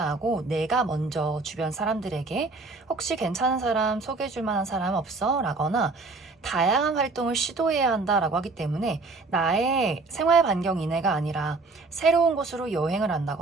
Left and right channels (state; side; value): quieter; left; 3.7 dB